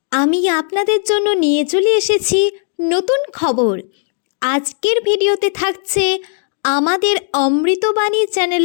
আমি আপনাদের জন্য নিয়ে চলে এসেছি নতুন খবর। আজকের ভিডিওতে থাকছে আমাদের অমৃতবাণী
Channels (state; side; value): silent; right; 61 dB below the other